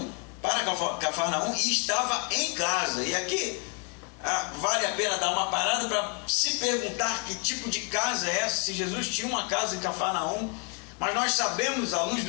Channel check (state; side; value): quieter; right; 34.5 dB